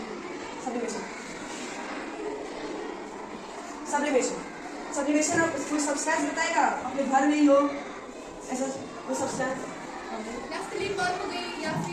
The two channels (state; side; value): identical; both; correlation 1.00